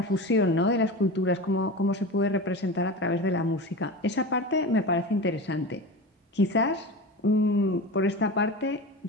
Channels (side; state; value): both; normal; correlation 0.28